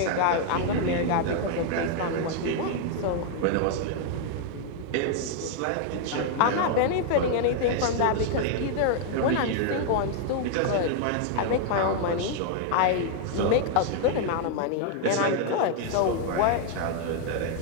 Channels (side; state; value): both; different; correlation 0.00